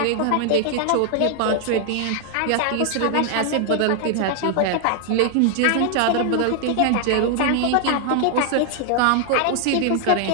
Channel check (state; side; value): different; both; correlation 0.00